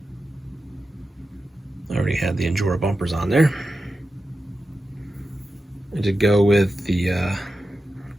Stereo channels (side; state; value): both; normal; correlation 0.91